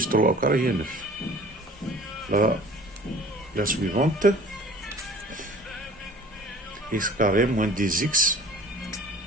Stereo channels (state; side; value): normal; both; correlation 0.46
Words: 3 au carré هي 9. La suivante, x carré moins 10x